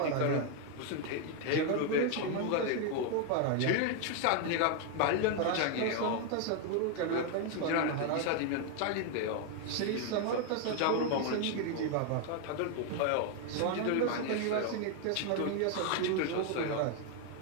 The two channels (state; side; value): different; both; correlation 0.01